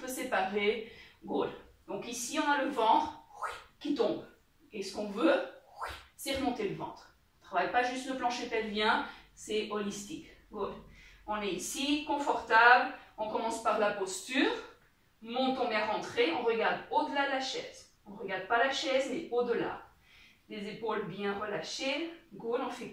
séparées. Good. Donc, ici, on a le ventre qui tombe. Et ce qu'on veut, c'est remonter le ventre. On ne travaille pas juste le plancher pelvien, c'est holistique. Good. On est ici, confortable. On commence par la posture. Montons bien rentré. On regarde au-delà de la chaise. On ne regarde pas la chaise, mais au-delà. Les épaules bien relâchées. Good. On fait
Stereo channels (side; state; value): both; identical; correlation 1.00